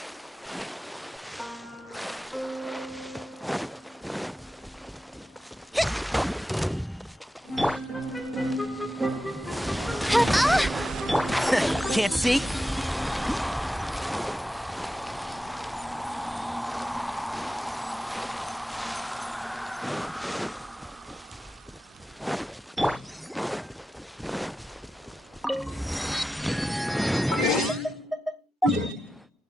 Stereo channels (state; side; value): normal; both; correlation 0.91